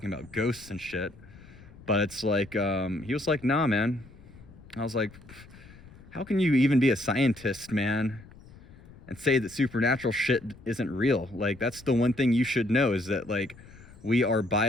about ghosts and shit, but it's like, he was like, nah, man. I was like, how can you even be a scientist, man, and say that supernatural shit isn't real? Like, that's the one thing you should know, is that like, we are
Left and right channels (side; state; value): left; noise; rumble, 21 dB below the sound